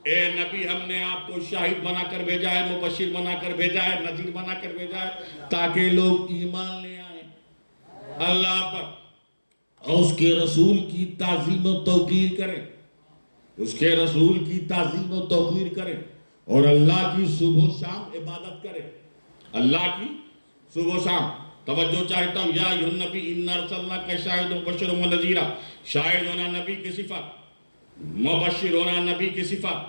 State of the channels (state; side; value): inverted; both; correlation -1.00